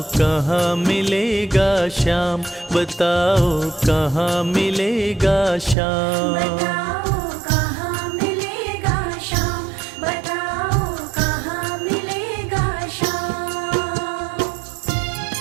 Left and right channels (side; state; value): left; drops out; at 5.8 s